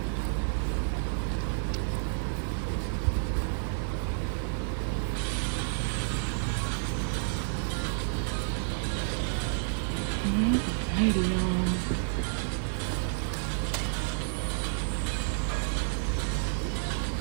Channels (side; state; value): left; silent; 58 dB below the other